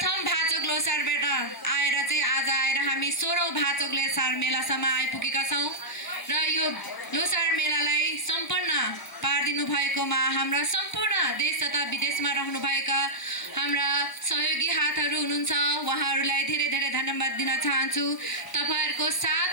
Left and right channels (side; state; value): right; late; 1.0 ms